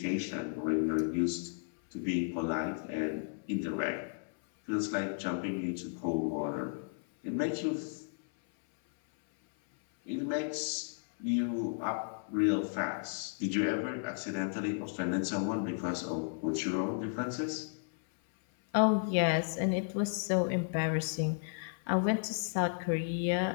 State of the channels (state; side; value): silent; right; 55 dB below the other